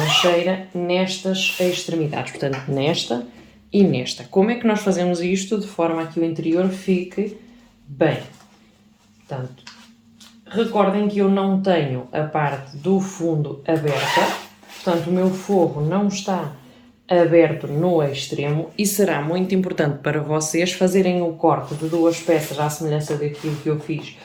nestas extremidades, portanto nesta e nesta. Como é que nós fazemos isto de forma a que o interior fique bem? Portanto, recordem que eu não tenho a parte do fundo aberta, portanto o meu forro não está aberto no extremo e será muito importante para vocês fazerem o corte de 2 peças à semelhança daquilo que eu fiz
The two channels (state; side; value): identical; both; correlation 1.00